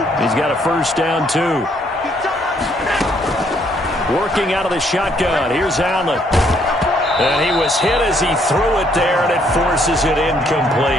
He's got a first down, too. Working out of the shotgun. Here's Allen. And he was hit as he threw it there, and it forces it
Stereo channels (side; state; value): both; normal; correlation 0.68